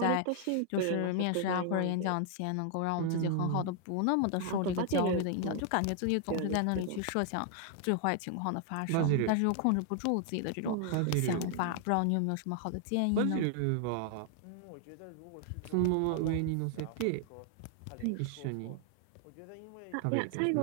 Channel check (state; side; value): different; both; correlation 0.00